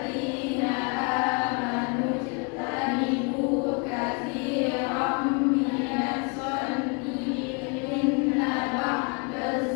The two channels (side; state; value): right; quieter; 34.0 dB